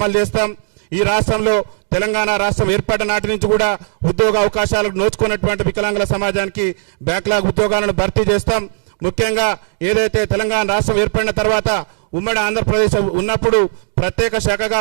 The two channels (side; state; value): left; silent; digital silence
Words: చేస్తాం. ఈ రాష్ట్రంలో తెలంగాణ రాష్ట్రం ఏర్పడిన నాటి నుంచి కూడా ఉద్యోగ అవకాశాలకు నోచుకున్నటువంటి వికలాంగుల సమాజానికి బ్యాక్లాగ్ ఉద్యోగాలను భర్తీ చేస్తాం. ముఖ్యంగా ఏదైతే తెలంగాణ రాష్ట్రం ఏర్పడిన తర్వాత ఉమ్మడి ఆంధ్రప్రదేశ్ ఉన్నప్పుడు ప్రత్యేక శాఖగా